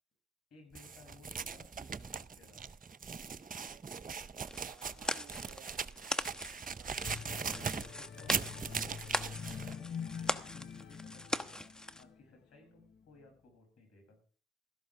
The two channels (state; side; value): normal; both; correlation 0.52